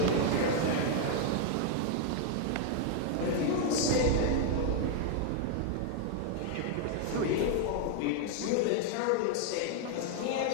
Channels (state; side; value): different; both; correlation 0.00